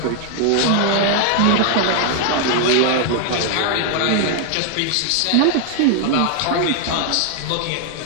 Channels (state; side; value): different; both; correlation 0.00